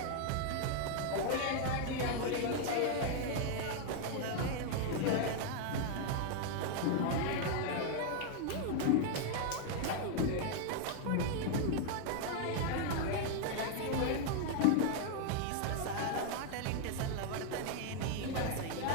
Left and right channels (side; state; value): both; different; correlation 0.00